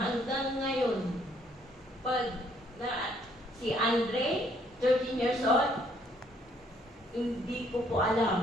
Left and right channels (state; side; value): normal; both; correlation 0.66